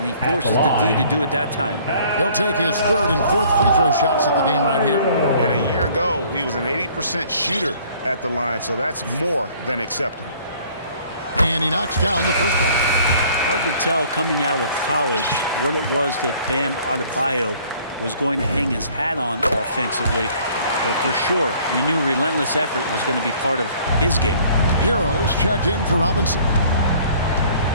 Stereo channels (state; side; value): inverted; both; correlation -0.56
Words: he forces the D to do it that time. He'll take his 3rd and 4th free throw shots of the game right here. And a year ago, he was an 80% shooter at the line, so that's more than acceptable. And he knocks down the first one. Hard to tell coming out of college what it was that Bam Adebayo was going to hang his hat on offensively. But for sure, you knew relentless effort was going to be part of his game. Heroes checked in for Robinson.